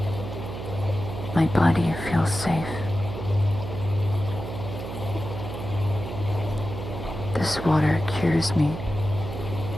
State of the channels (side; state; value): right; noise; hum, 8 dB below the sound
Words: My body feels safe. This water cures me.